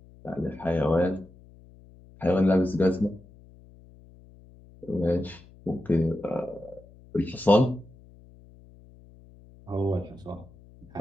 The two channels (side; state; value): left; noise; hum, 24 dB below the sound